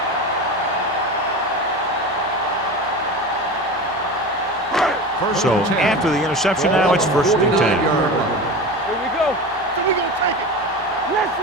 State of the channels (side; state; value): both; normal; correlation 0.28